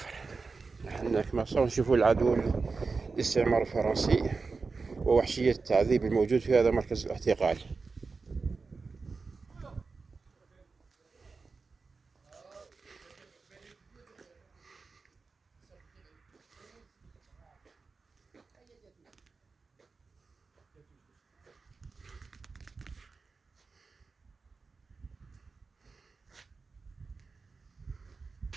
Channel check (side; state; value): left; quieter; 4.4 dB